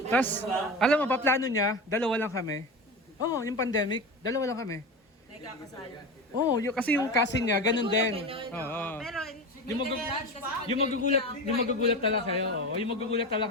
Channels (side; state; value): both; normal; correlation 0.25